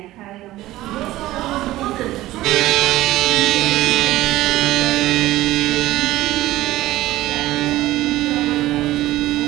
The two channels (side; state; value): left; quieter; 16.2 dB